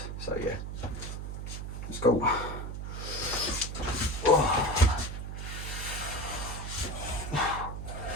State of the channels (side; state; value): right; noise; hum, 6 dB below the sound